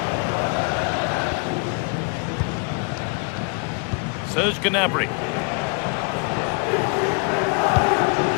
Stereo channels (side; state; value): right; quieter; 34.5 dB